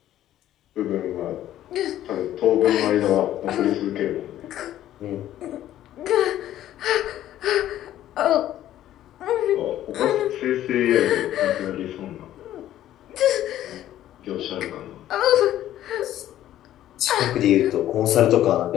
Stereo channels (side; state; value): right; quieter; 12.7 dB